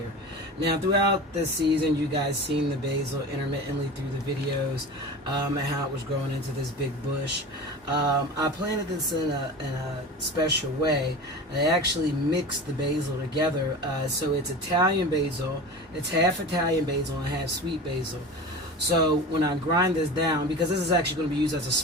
Now, throughout this season, you guys seen the basil intermittently through the videos and how it was growing into this big bush. I planted this in a special way. I actually mixed the basil together, so it's Italian basil. It's half Italian basil and half sweet basil. So when I grind this down, because this is actually going to be used as a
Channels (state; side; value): normal; both; correlation 0.32